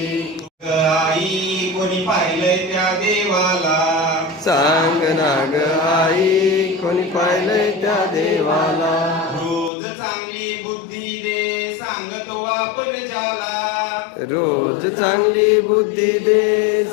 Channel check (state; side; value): drops out; right; at 9.7 s